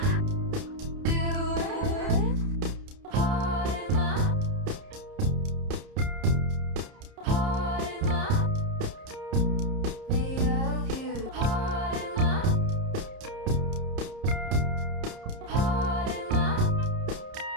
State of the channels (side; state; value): left; late; 30 ms